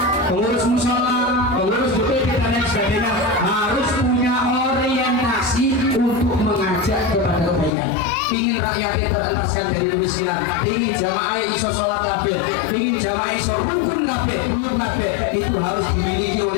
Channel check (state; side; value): drops out; right; at 7.7 s